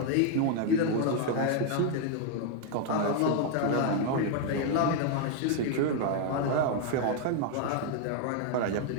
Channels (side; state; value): both; different; correlation 0.00